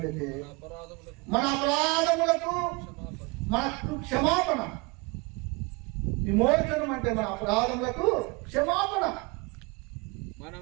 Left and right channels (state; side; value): quieter; left; 27.4 dB